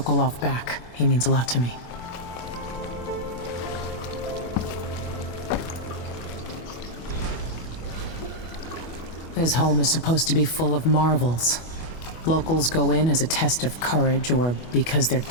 back. He means a lot to me. His home is supposed to be full of marvels. Locals go in as a test of courage or because they're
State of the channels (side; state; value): right; late; 25 ms